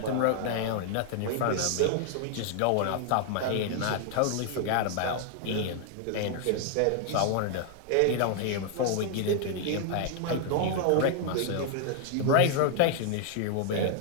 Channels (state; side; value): different; both; correlation 0.00